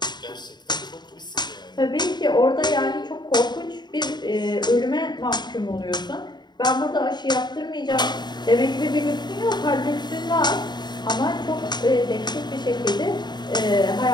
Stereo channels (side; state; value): right; late; 0.21 ms